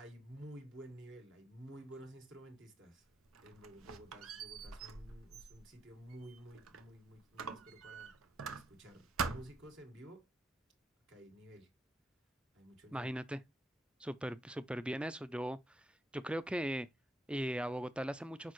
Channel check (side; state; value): both; normal; correlation 0.81